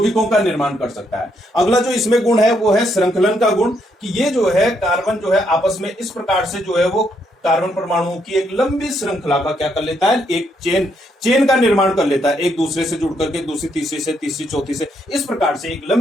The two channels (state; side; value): normal; both; correlation 0.75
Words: का निर्माण कर सकता है। अगला जो इसमें गुण है वो है श्रृंखलन का गुण, कि ये जो है कार्बन जो है आपस में इस प्रकार से जो है वो कार्बन परमाणुओं की एक लंबी श्रृंखला का क्या कर लेता है, एक चेन का निर्माण कर लेता है, एक दूसरे से जुड़ करके दूसरी तीसरी से तीसरी चौथी से इस प्रकार से एक